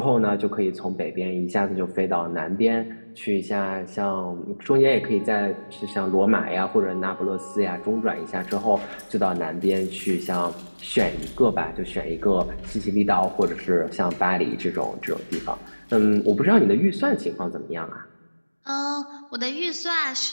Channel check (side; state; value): both; inverted; correlation -1.00